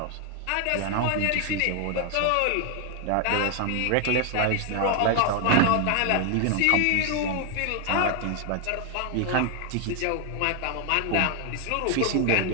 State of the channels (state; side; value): different; both; correlation 0.00